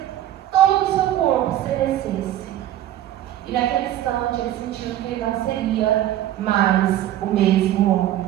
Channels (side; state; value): left; quieter; 12.8 dB